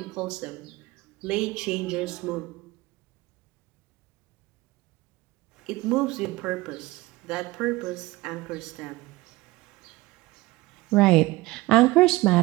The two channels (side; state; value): left; quieter; 20.1 dB